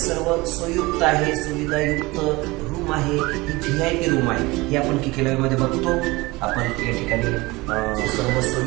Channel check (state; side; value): quieter; left; 22.1 dB